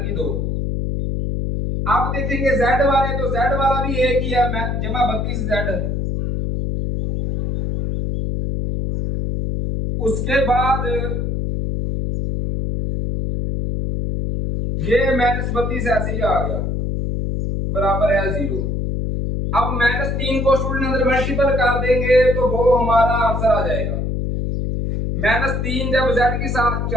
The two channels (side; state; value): left; noise; hum, 1 dB below the sound